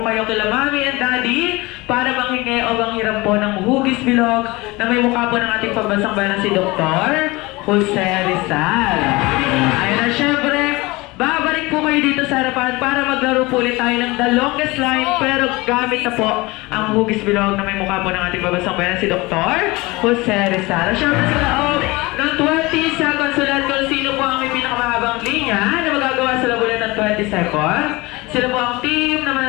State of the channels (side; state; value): right; quieter; 22.6 dB